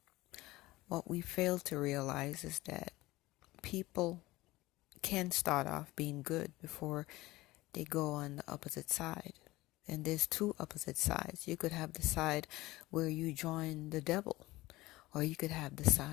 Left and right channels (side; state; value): right; quieter; 18.9 dB